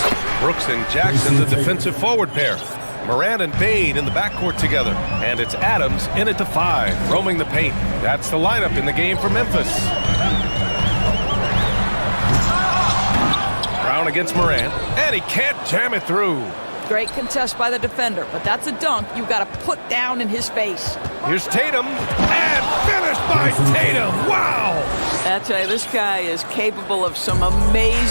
Brooks and Jackson, the defensive forward pair. Morant and Bane in the backcourt together. And it's Adams in at the 5, roaming the paint. That's the lineup in the game for Memphis. Brown against Morant, and he can't jam it through. Great contest by the defender, but that's a dunk you got to put down in his face. Here's Tatum, and finished by Tatum. Wow! I tell you, this guy is capable of some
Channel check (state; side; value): inverted; both; correlation -1.00